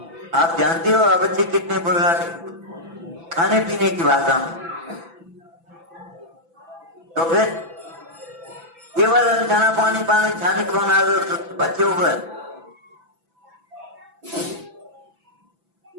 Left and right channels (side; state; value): left; late; 6.0 ms